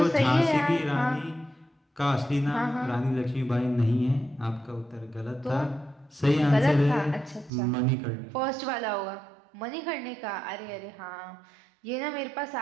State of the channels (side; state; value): left; drops out; at 7.5 s